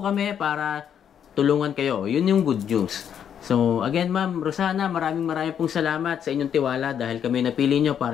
kami para tulungan kayo. Yun yung good news. So, again, Ma'am Rosana, maraming pong salamat sa inyong tiwala dahil kami napili nyo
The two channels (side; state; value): right; quieter; 8.7 dB